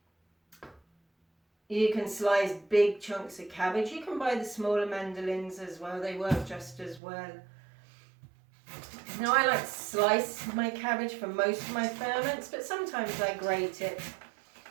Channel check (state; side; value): drops out; left; at 7.0 s